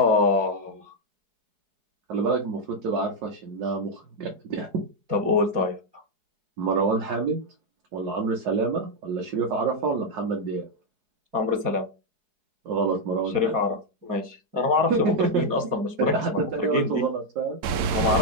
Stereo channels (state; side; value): late; left; 4.7 ms